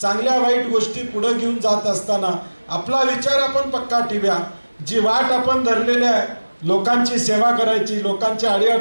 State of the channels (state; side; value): inverted; both; correlation -1.00